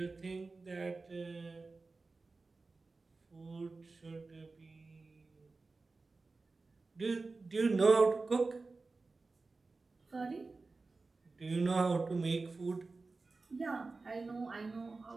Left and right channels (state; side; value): quieter; left; 3.8 dB